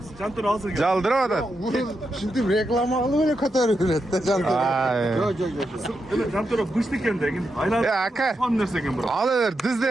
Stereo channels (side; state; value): both; normal; correlation 0.85